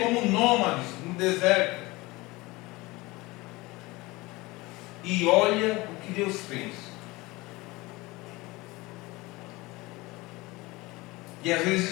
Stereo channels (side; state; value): right; quieter; 22.0 dB